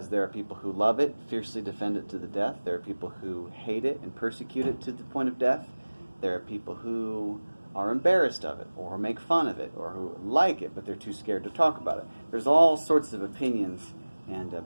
there are people who love it, fiercely defend it to the death. There are people who hate it and persecute it to the point of death. There are people who are embarrassed of it or make fun of it or who like it, but they're too scared to talk about it. There's all sorts of opinions and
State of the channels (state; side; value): inverted; both; correlation -1.00